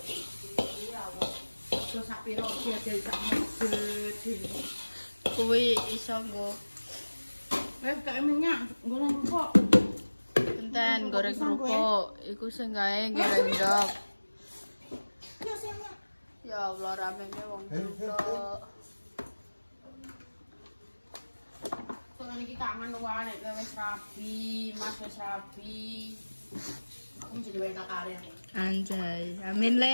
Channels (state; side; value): inverted; both; correlation -1.00